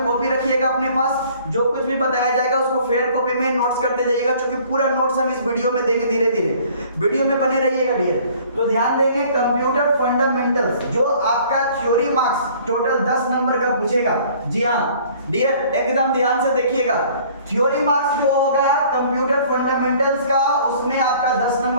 कॉपी रखिएगा अपने पास, जो कुछ भी बताया जाएगा उसको फेयर कॉपी में नोट्स करते जाइएगा, क्योंकि पूरा नोट्स हम इस वीडियो में देंगे। धीरे धीरे वीडियो में बने रहिएगा डियर। तो ध्यान देंगे कंप्यूटर फंडामेंटल्स, जो आपका थ्योरी मार्क्स टोटल 10 नंबर का पूछेगा। जी हाँ डियर, एकदम ध्यान से देखिएगा, थ्योरी मार्क्स जो होगा कंप्यूटर फंडामेंटल्स का उसमें आपका 10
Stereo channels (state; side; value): inverted; both; correlation -0.54